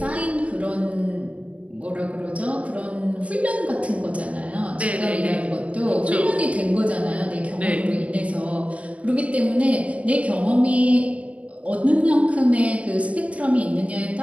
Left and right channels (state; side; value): late; left; 0.064 ms